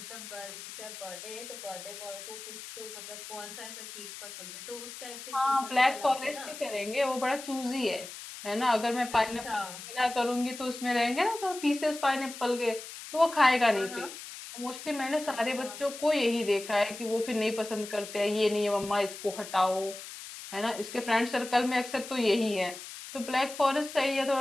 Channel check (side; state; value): left; noise; hiss, 12 dB below the sound